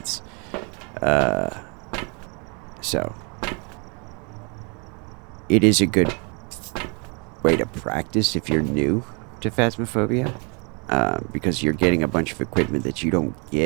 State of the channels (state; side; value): quieter; left; 33.9 dB